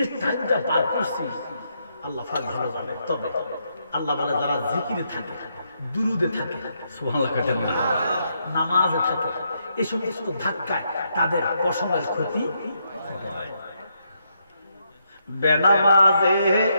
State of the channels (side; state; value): both; inverted; correlation -0.78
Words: টাইমটা পার করছি আল্লাহ পাক ভালো জানে। তবে আল্লাহ বলে যারা জিকিরে থাকে, দুরুদে থাকে, সুবহানাল্লাহ কাটেন না, নামাজে থাকে, এই সমস্ত ধাক্কায় তাদের পশমের ক্ষতি হয়। বেনামাজে